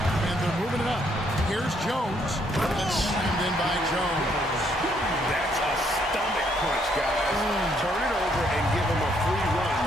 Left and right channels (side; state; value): both; normal; correlation 0.70